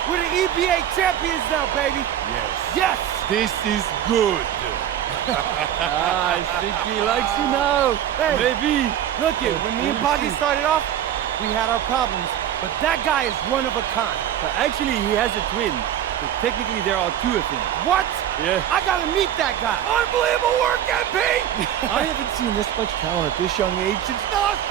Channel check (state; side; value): quieter; left; 10.7 dB